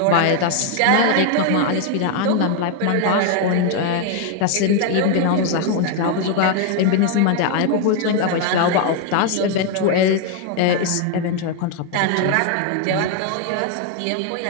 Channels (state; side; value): different; both; correlation 0.01